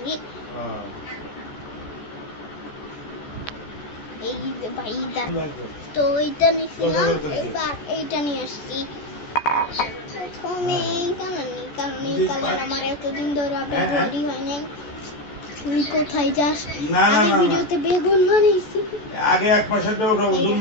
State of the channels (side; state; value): right; late; 14 ms